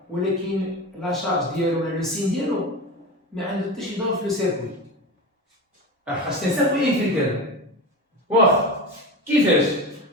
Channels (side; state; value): both; normal; correlation 0.25